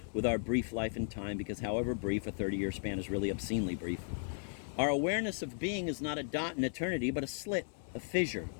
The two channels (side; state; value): right; silent; 54 dB below the other